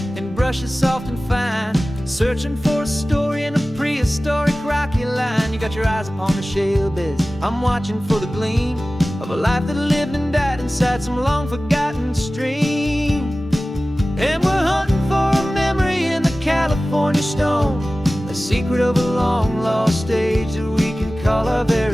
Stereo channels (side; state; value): both; normal; correlation 0.97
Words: and brushes soft and fine, searching for a story in a prehistoric rocky line. You got your eyes upon the shale beds, I'm watching for the gleam of a life that lived and died inside some long forgotten stream. And we're hunting for a memory in the California stone, a secret of a long lost age that we can call our